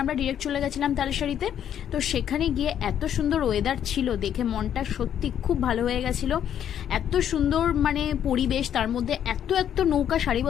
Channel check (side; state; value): right; quieter; 9.7 dB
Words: আমরা ডিরেক্ট চলে গেছিলাম তালসারিতে। তো সেখানে গিয়ে এত সুন্দর ওয়েদার ছিল, দেখে মনটা সত্যি খুব ভালো হয়ে গেছিলো। এত সুন্দর মানে পরিবেশ, তার মধ্যে এত এত নৌকা